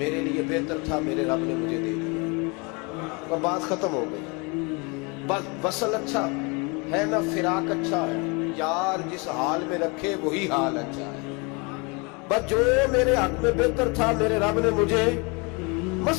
لیے بہتر تھا میرے رب نے مجھے دے دیا. اور بات ختم ہو گئی. بس وصل اچھا, ہے نا فراق اچھا ہے، یار جس حال میں رکھے وہی حال اچھا ہے۔ بس جو میرے حق میں بہتر تھا میرے رب نے مجھے،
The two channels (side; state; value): right; quieter; 30.1 dB